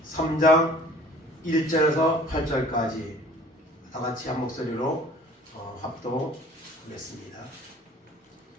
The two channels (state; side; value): normal; both; correlation 0.49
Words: 3장 1절에서 8절까지 다같이 한 목소리로 합독하겠습니다.